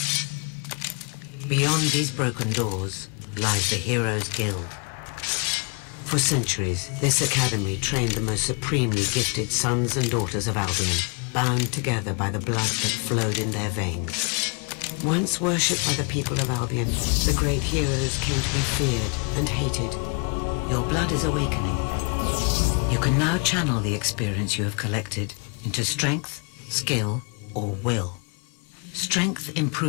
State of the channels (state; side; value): quieter; right; 35.8 dB